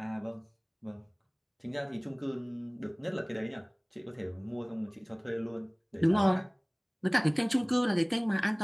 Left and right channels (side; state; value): both; identical; correlation 1.00